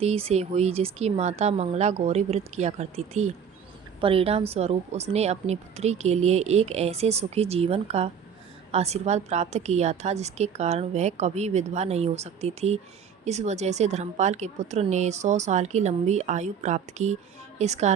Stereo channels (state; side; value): quieter; left; 7.4 dB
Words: से हुई जिसकी माता मंगला गौरी व्रत किया करती थी। परिणाम स्वरूप उसने अपनी पुत्री के लिए एक ऐसे सुखी जीवन का आशीर्वाद प्राप्त किया था जिसके कारण वह कभी विधवा नहीं हो सकती थी। इस वजह से धर्मपाल के पुत्र ने 100 साल की लंबी आयु प्राप्त की। इस